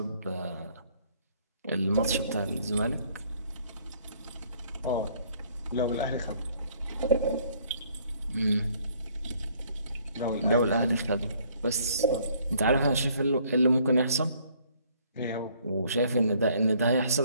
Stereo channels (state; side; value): inverted; both; correlation -0.61